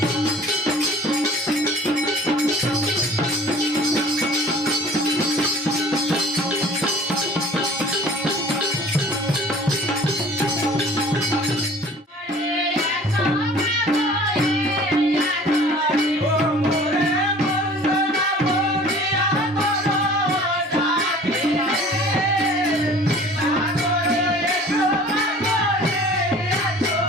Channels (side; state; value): both; normal; correlation 0.47